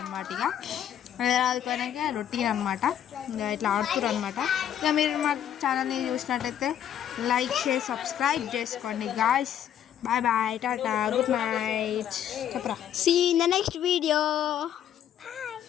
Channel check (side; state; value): right; quieter; 10.0 dB